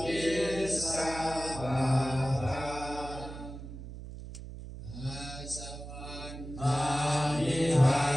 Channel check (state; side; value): noise; right; hum, 11 dB below the sound